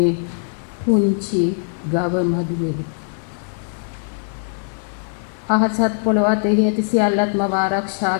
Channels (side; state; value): right; silent; digital silence